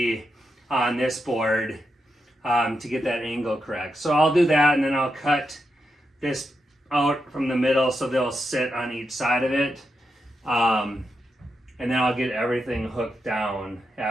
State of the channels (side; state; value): both; normal; correlation 0.85